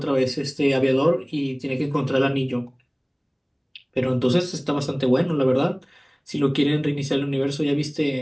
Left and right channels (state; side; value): identical; both; correlation 1.00